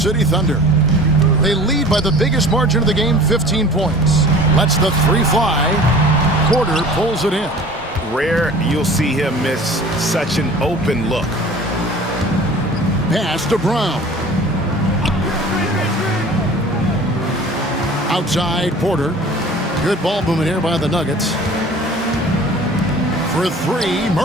Thunder. They lead by the biggest margin of the game, 15 points. Lets the three fly. Porter pulls it in. Rare you'll see him miss such an open look. Pass to Brown. Outside, Porter. Good ball movement here by the Nuggets. For three,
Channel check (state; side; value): normal; both; correlation 0.44